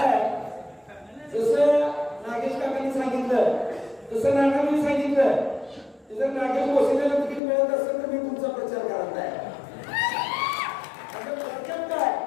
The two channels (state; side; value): drops out; right; at 7.4 s